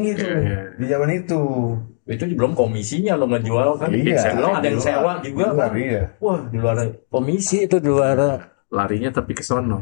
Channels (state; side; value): silent; right; digital silence